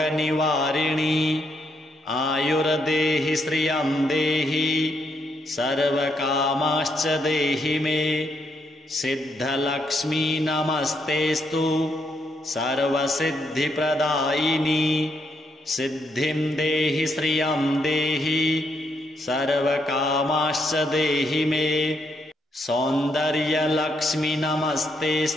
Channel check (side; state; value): both; normal; correlation 0.76